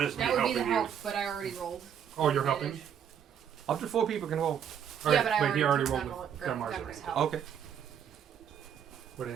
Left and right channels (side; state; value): left; quieter; 8.5 dB